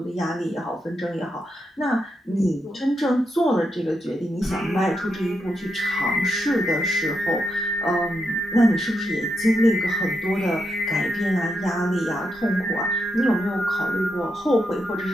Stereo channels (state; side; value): normal; both; correlation 0.83